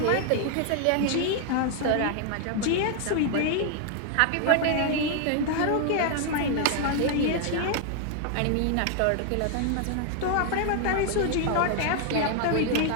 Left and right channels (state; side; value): different; both; correlation 0.00